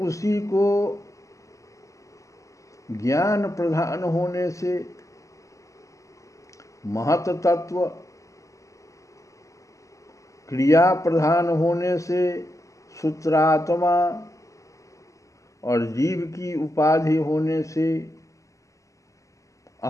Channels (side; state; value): right; late; 0.16 ms